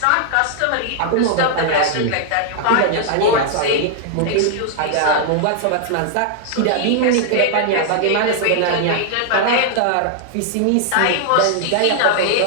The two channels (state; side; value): different; both; correlation -0.01